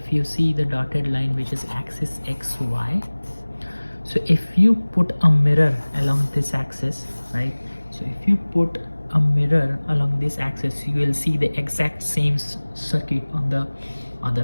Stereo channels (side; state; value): both; inverted; correlation -1.00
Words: you see the dotted line, which is axis XY, so if you put a mirror along this axis, right? So if you put a mirror along this axis, you will see the exact same circuit on the other